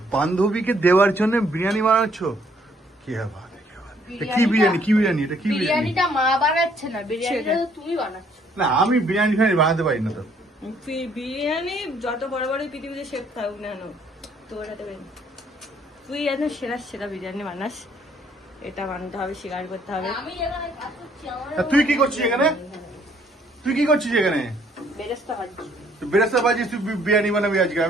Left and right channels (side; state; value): both; normal; correlation 0.64